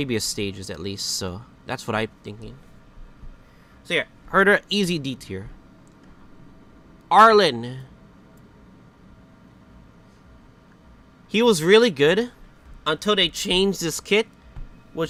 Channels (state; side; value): identical; both; correlation 1.00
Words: stages at least, so that's what I'm thinking. So yeah, Herta, easy D tier. Arlen. He was really good until they changed this kit,